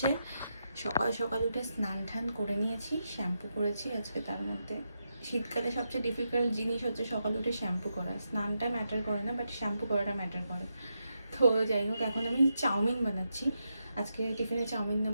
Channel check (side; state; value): both; inverted; correlation -0.85